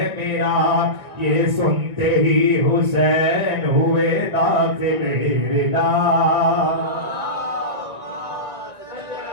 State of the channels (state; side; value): late; left; 1.7 ms